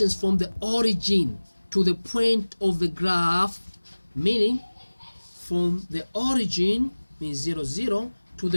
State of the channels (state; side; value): inverted; both; correlation -1.00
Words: from the origin to the point of the graph, meaning from the origin, means 0, 0, to